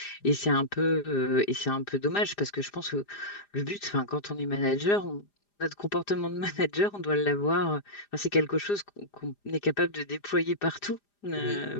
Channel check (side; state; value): right; late; 4.9 ms